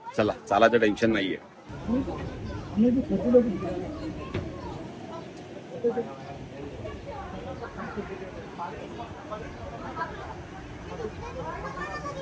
चला चालायचं टेन्शन नाहीये।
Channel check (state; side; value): identical; both; correlation 1.00